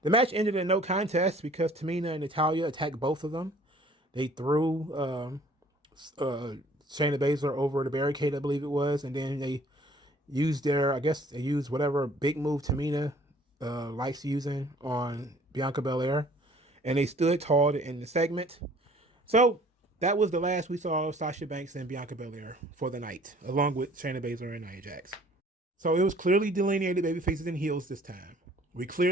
the match ended in no contest because Tamina and Natalya attacked both of them. They threw Shayna Baszler over the barricade, I believe it was, and then they used whatever big move Tamina likes using on Bianca Belair, and they stood tall to end the segment. So that was the last we saw of Sasha Banks and Bianca Belair for the night, along with Shayna Baszler and Nia Jax. So it was clearly delineated baby faces and heels this time. We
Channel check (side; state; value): both; normal; correlation 0.54